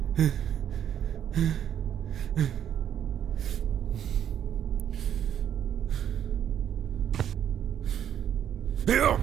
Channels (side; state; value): left; quieter; 9.7 dB